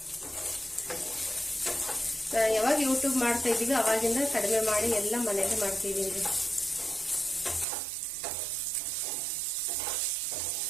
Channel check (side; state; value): left; drops out; at 7.7 s